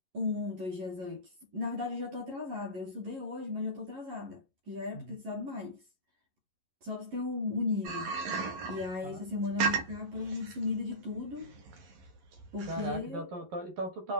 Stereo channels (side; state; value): left; late; 11 ms